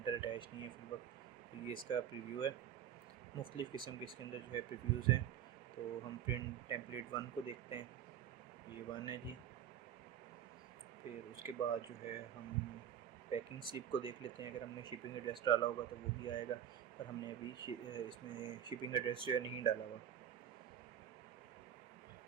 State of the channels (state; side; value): quieter; left; 9.7 dB